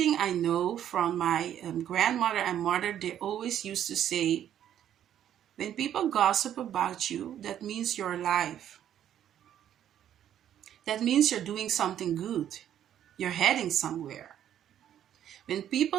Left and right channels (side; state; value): left; quieter; 10.5 dB